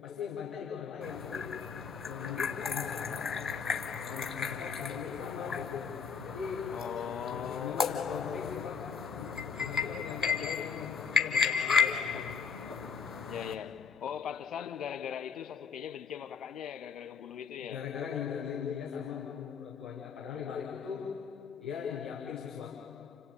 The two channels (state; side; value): quieter; right; 6.2 dB